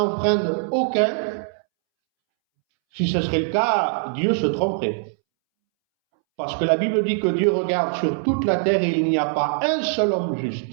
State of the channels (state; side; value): silent; left; 64 dB below the other